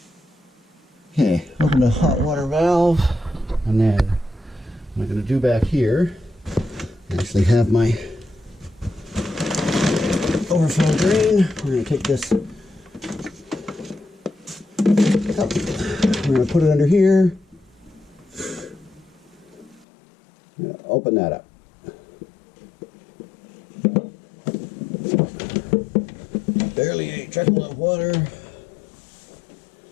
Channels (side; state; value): right; drops out; at 19.9 s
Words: Okay, open the hot water valve, and then what I'm going to do back here, I actually have my overflow drain. We're going to take this up. We're going to put it under here. I'm going to open that up. Barely a trickle of water.